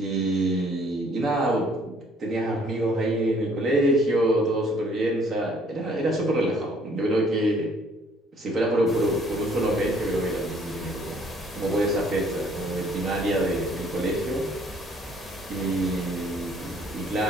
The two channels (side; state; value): both; normal; correlation 0.61